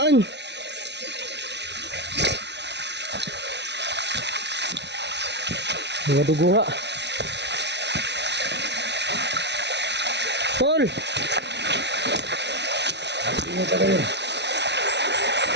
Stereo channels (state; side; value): late; left; 0.50 ms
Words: Mga dugo nga. Tol. Tingnan ka kayo.